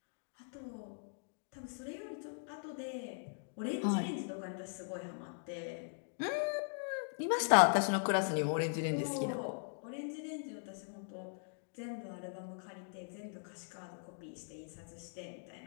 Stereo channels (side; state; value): right; silent; digital silence